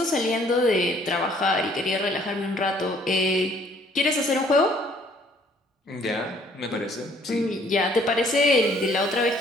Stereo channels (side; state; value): both; normal; correlation 0.61